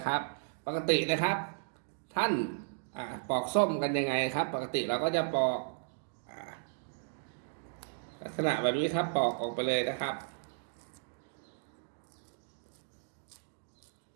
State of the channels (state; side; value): silent; left; digital silence